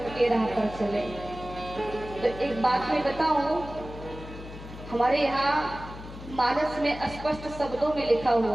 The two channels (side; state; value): left; noise; hum, 13 dB below the sound